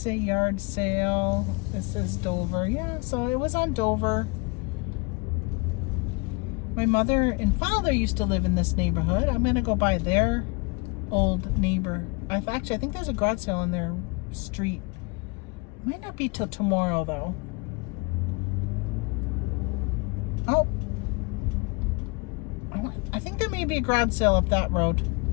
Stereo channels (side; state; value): right; quieter; 28.3 dB